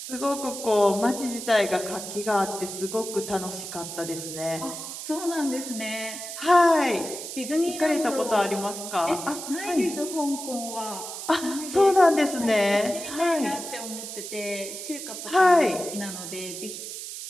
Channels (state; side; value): noise; right; hiss, 8 dB below the sound